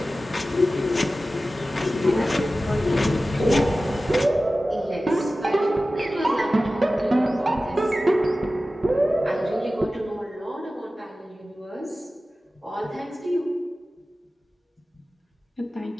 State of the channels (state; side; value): normal; both; correlation 0.95